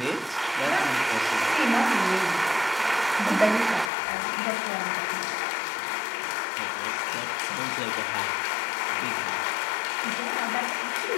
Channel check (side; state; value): right; drops out; at 3.9 s